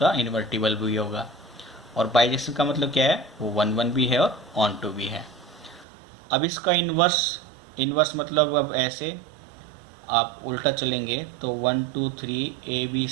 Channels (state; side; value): drops out; left; at 5.9 s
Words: इन्वर्टिबल भी होगा, और बाइजेक्शन का मतलब क्या है, वो 1 1 भी है और ऑन टू भी है। अब इसका इन्वर्स मतलब अब ऐसे आप उल्टा चलेंगे तो 1 2 3 a b